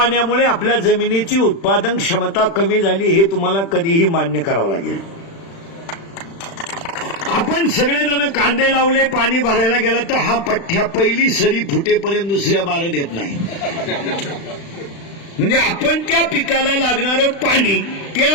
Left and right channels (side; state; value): right; late; 36 ms